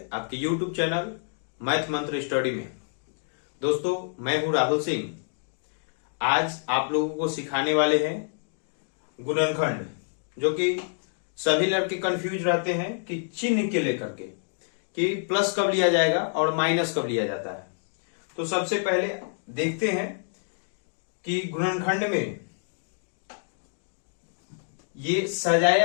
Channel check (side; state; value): right; silent; digital silence